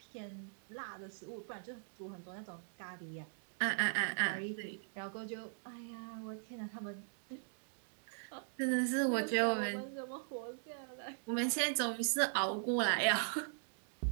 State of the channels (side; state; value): left; silent; digital silence